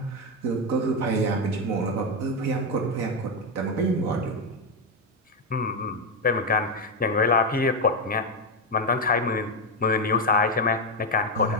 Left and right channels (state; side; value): normal; both; correlation 0.07